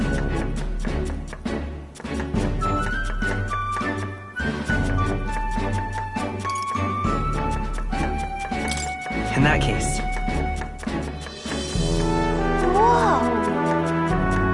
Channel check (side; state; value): both; identical; correlation 1.00